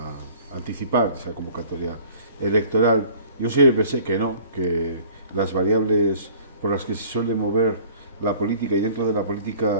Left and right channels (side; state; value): both; inverted; correlation -0.49